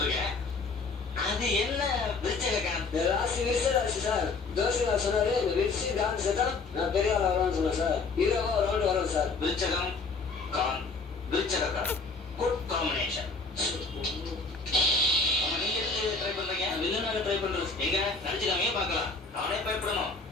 அது என்ன விருச்சகாந்த்? ராசி விருச்சராசி சார். ஜோசிகார் சொன்னாரு இந்த விருச்சிகாந்த் செத்தா நான் பெரிய ஆள் ஆகிறேன்னு சொன்னேன் சார். ஹீரோவா ஒரு ரவுண்ட் வரும் சார். விருச்சகம் காந்த், விருச்சகாந்த், குட் காம்பினேஷன். நீங்க எதுக்கு ட்ரை பண்றீங்க? வில்லனாக ட்ரை பண்றது. எங்க நடிச்சுக்காமையே பார்க்கலாம். நானே பயப்படணும்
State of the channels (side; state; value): right; quieter; 4.1 dB